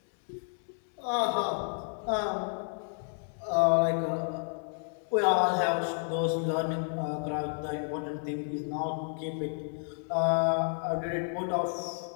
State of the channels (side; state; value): right; silent; 57 dB below the other